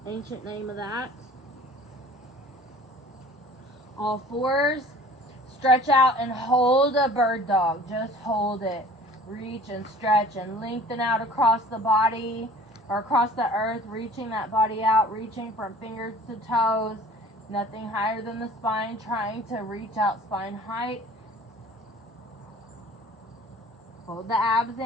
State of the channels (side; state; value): both; normal; correlation 0.47